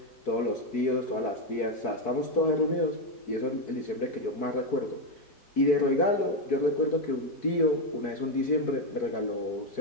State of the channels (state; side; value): late; right; 4.6 ms